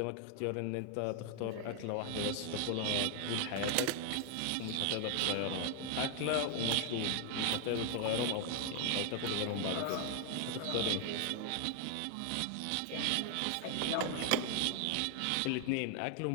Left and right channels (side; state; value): both; different; correlation 0.00